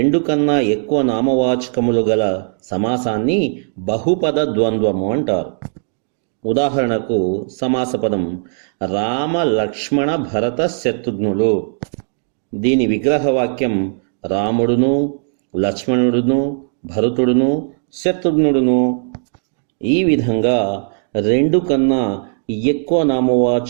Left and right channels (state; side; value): silent; left; digital silence